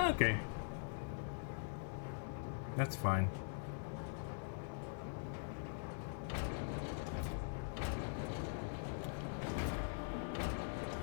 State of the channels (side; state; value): right; silent; digital silence